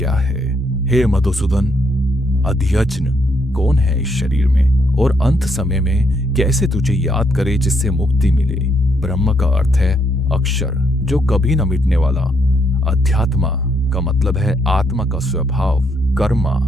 है। हे मधुसूदन, अध्यज्ञ कौन है इस शरीर में, और अंत समय में कैसे तुझे याद करे जिससे मुक्ति मिले। ब्रह्म का अर्थ है अक्षर, जो कभी न मिटने वाला। अध्यात्म का मतलब है आत्मा का स्वभाव। कर्मा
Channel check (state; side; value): normal; both; correlation 0.74